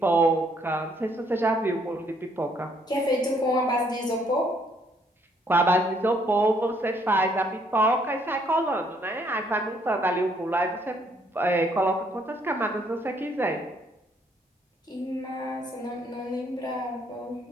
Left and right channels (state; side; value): normal; both; correlation 0.68